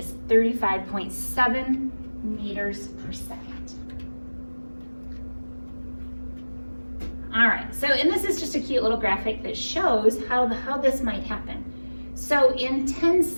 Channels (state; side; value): inverted; both; correlation -1.00